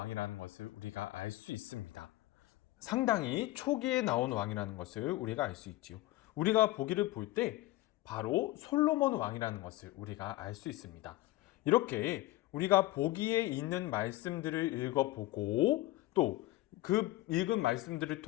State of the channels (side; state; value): right; quieter; 17.6 dB